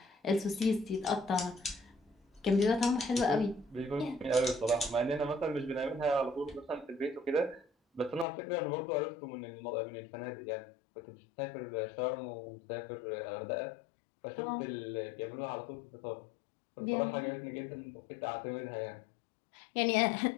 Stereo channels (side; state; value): right; drops out; at 8.2 s